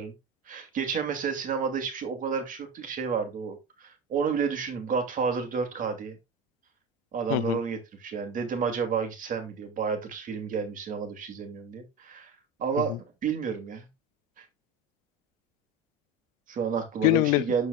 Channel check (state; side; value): normal; both; correlation 0.23